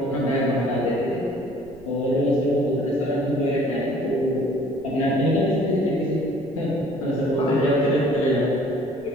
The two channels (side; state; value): right; noise; rumble, 23 dB below the sound